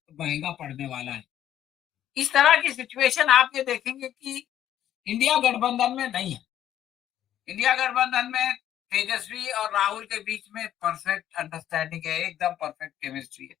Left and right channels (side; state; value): right; quieter; 11.3 dB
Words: महंगा पड़ने वाला है। इस तरह की सिचुएशन आप ये देखेंगे कि इंडिया गठबंधन में नहीं है। इंडिया गठबंधन में तेजस्वी और राहुल के बीच में परफेक्ट अंडरस्टैंडिंग है, एकदम परफेक्ट केमिस्ट्री है।